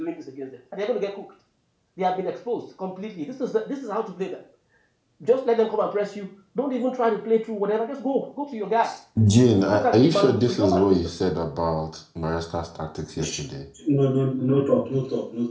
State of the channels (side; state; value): both; identical; correlation 1.00